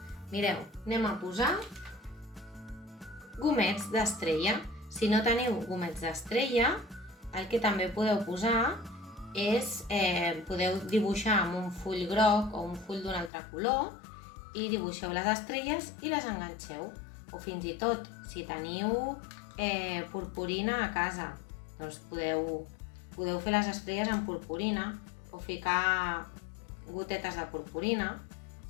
Mireu, anem a posar gomets d'estrella. Si no teniu gomets d'estrella, el que també podeu posar és, podeu dibuixar amb un full groc o un full d'un altre color i dibuixeu les estrelles i les enganxeu. O fins i tot, si teniu purpurina a casa, doncs podeu fer les estrelles amb purpurina o ficar gotetes de purpurina,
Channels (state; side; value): drops out; right; at 13.3 s